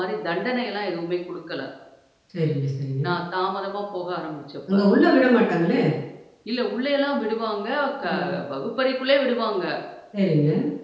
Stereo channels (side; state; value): both; identical; correlation 1.00